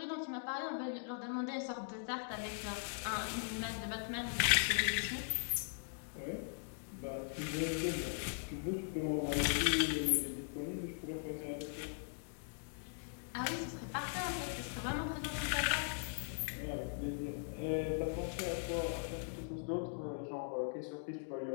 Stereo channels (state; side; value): silent; right; digital silence